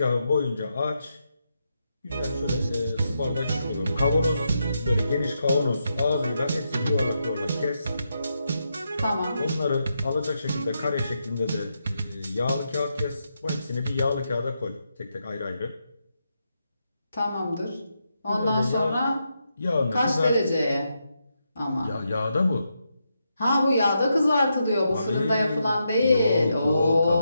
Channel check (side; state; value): both; inverted; correlation -0.84